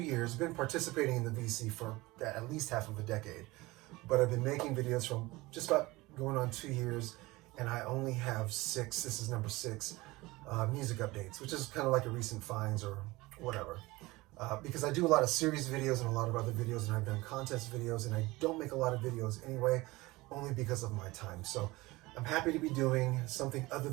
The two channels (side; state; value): left; quieter; 21.0 dB